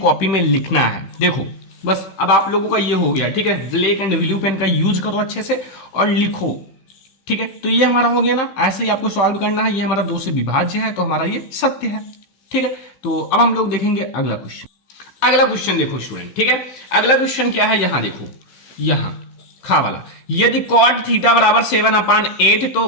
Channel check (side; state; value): right; late; 15 ms